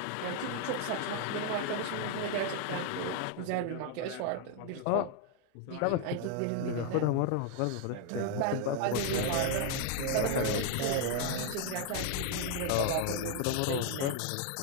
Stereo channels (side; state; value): both; different; correlation 0.00